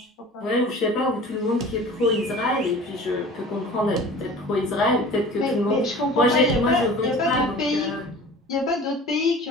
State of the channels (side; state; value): both; normal; correlation 0.42